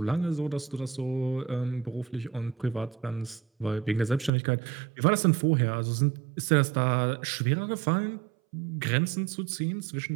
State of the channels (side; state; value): left; drops out; at 4.3 s